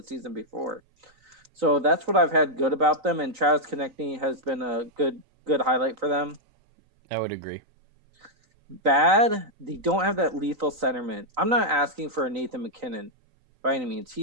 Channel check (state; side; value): late; left; 3.9 ms